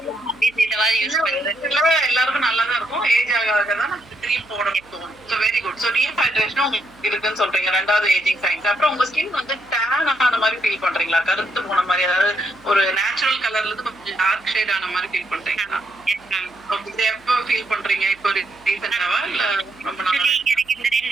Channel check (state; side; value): noise; right; hum, 29 dB below the sound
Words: இதுவாது யூஸ் பண்றேன். எல்லாருக்கும் நல்லா தான் இருக்கும். ஏஜ் ஆக தான் கிரீம் போடணும் தோணும். So very good. So dehydration உங்களுக்கு இருக்குன்னு சொல்றீங்க. ரெண்டாவது ஏஜிங் சைன்ஸ். அப்புறம் உங்க ஸ்கின் வந்து டேன் ஆன மாதிரி ஃபீல் பண்றீங்களா? கருத்து போன மாதிரி, அதாவது ஒரு நேச்சுரல் கலர்ல இருந்து கொஞ்சம் டார்க் ஷேட் ஆன மாதிரி ஃபீல் பண்றீங்களா? இது எப்போ ஃபீல் பண்றீங்க? இப்போ ரீசெண்டாவா இல்ல ரொம்ப நாளா? எனக்கு இந்த